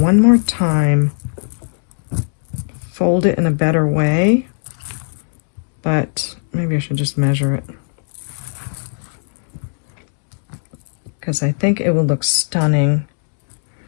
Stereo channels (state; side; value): silent; right; digital silence